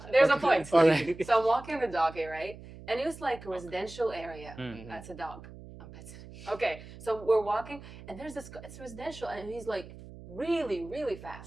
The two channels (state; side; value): noise; right; hum, 16 dB below the sound